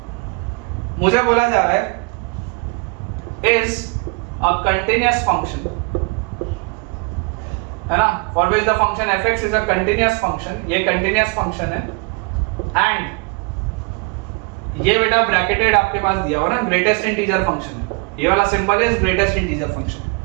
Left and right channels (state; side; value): quieter; left; 32.1 dB